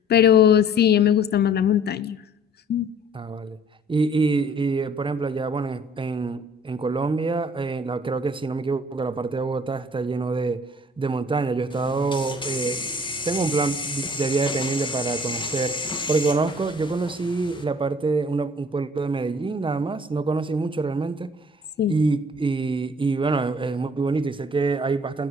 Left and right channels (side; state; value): both; normal; correlation 0.54